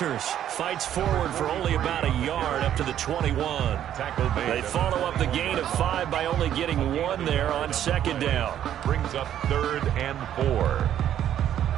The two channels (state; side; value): quieter; left; 10.7 dB